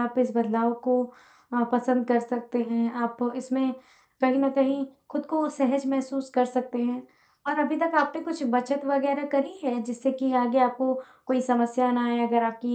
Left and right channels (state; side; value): identical; both; correlation 1.00